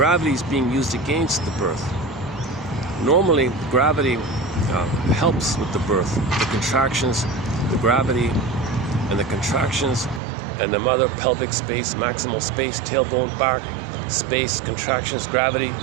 is being used against the birth. Normally, gravity helps with the birth. The contractions, the gravity, and the contractions, and the mother, pelvic space, maximal space, tailbone, back, space, contractions, gravity,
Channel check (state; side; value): drops out; left; at 10.2 s